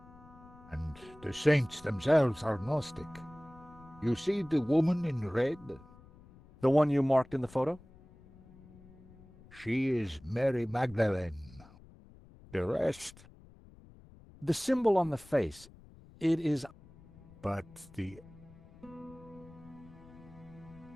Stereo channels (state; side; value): noise; left; rumble, 22 dB below the sound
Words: And the saints themselves are Gnostic. You see the woman in red? The one you marked in the photo? She is Mary Magdalene. The rest... The symbol on the face, it is... But the...